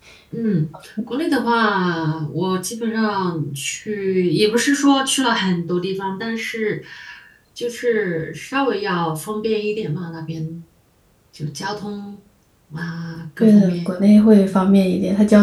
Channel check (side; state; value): both; identical; correlation 1.00